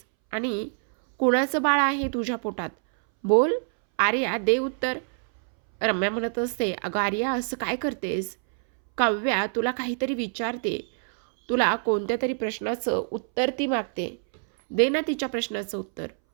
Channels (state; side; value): silent; left; 61 dB below the other